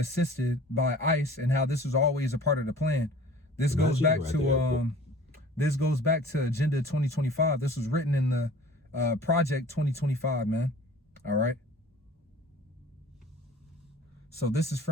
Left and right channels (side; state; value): both; normal; correlation 0.46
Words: by ICE, and how this was always a part of the plan. This goes back to this goes back to Agenda 2025. This was written in the Project 2025, man. All right. So this is